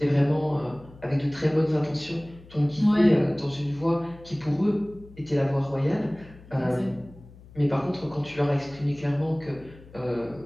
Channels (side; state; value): left; noise; hum, 21 dB below the sound